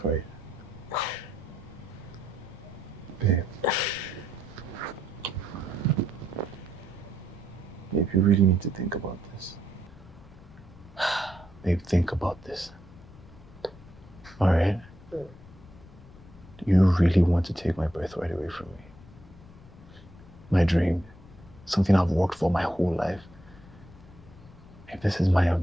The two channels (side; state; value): left; noise; rumble, 20 dB below the sound